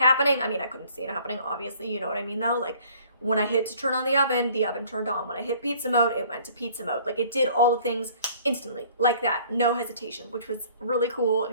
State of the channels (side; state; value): both; inverted; correlation -0.55